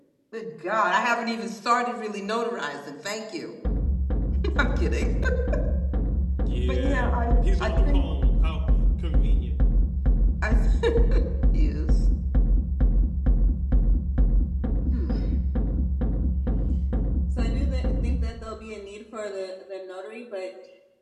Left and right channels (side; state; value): both; identical; correlation 1.00